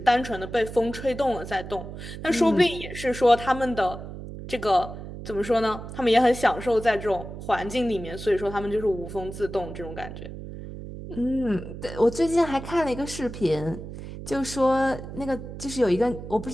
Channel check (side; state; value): right; noise; hum, 11 dB below the sound